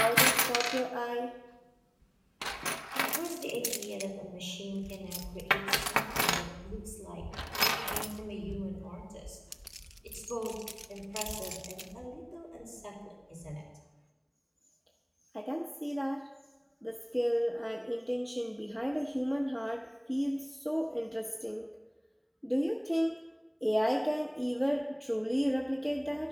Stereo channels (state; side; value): identical; both; correlation 1.00